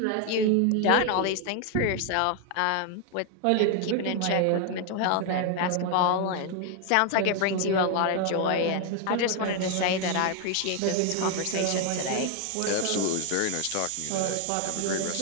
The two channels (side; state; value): both; different; correlation 0.01